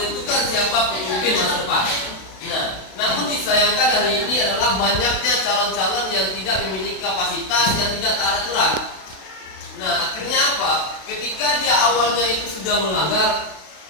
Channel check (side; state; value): right; late; 32 ms